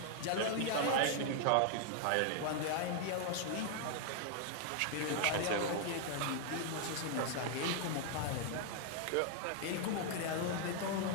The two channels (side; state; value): both; different; correlation 0.00